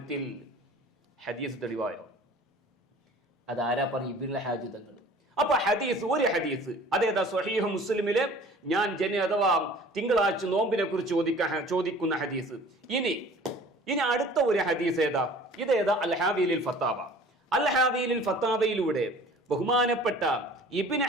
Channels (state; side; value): normal; both; correlation 0.47